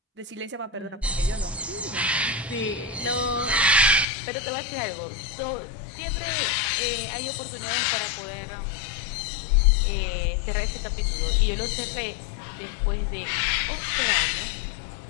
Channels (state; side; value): drops out; right; at 4.0 s